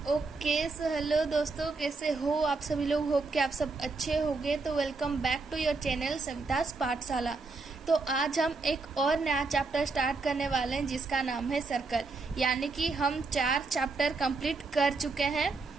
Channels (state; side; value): quieter; left; 3.9 dB